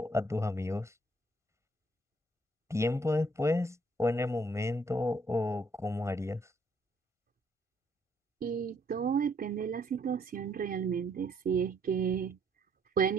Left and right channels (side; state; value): both; normal; correlation 0.68